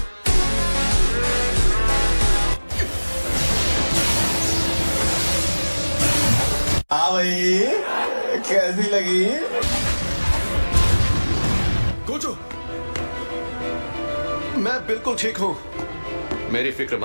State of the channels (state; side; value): inverted; both; correlation -1.00